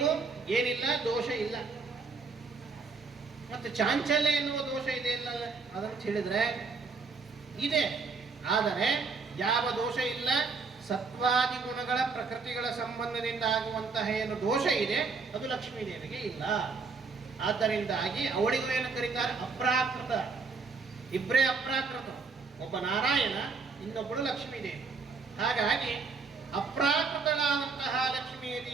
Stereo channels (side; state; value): left; quieter; 4.6 dB